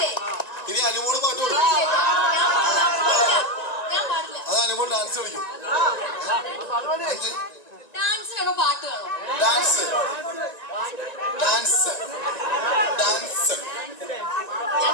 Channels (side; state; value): right; late; 1.9 ms